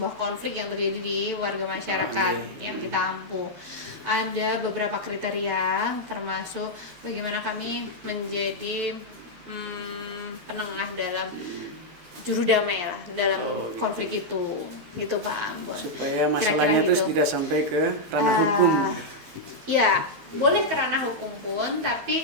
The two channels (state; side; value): late; left; 12 ms